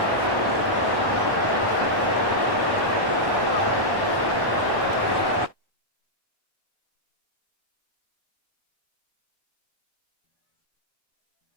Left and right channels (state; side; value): late; left; 1.1 ms